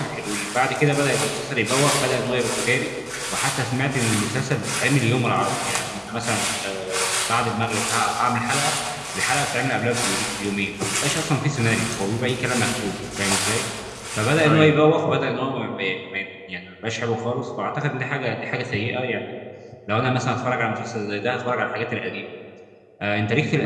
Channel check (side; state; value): both; identical; correlation 1.00